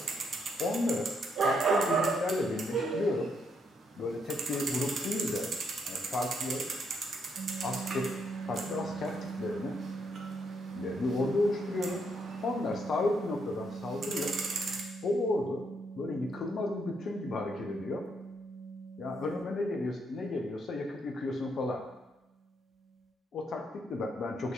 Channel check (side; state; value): both; normal; correlation 0.75